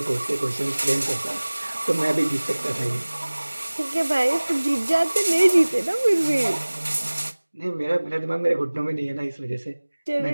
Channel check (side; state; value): both; inverted; correlation -1.00